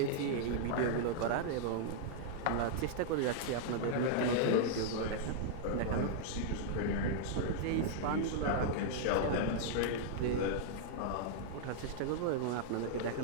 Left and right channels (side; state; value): both; different; correlation -0.01